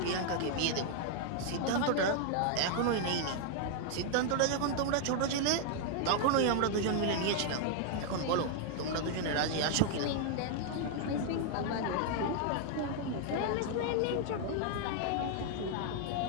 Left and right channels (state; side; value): different; both; correlation 0.00